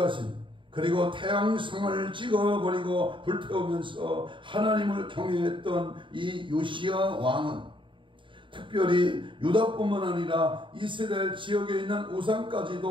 그리고 태양성을 찍어버리고 불태우면서 하나님을 경외했던 이 요시야 왕은 특별히 유다뿐만 아니라 이스라엘 지역에 있는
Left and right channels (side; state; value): left; late; 0.24 ms